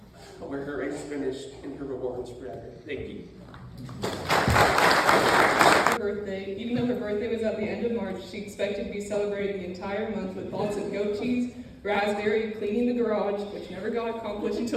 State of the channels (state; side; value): identical; both; correlation 1.00